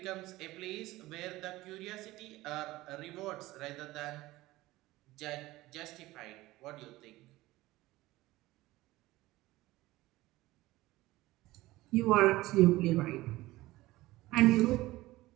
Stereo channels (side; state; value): left; quieter; 18.1 dB